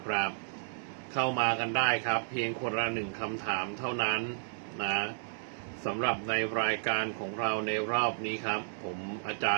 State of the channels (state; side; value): silent; left; digital silence